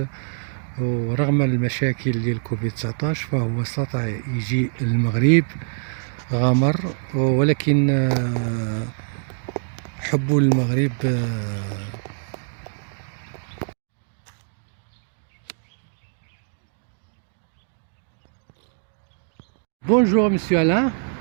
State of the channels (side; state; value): left; silent; digital silence